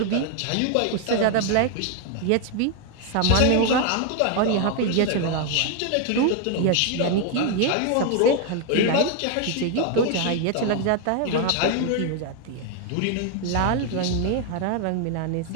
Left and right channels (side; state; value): both; different; correlation 0.00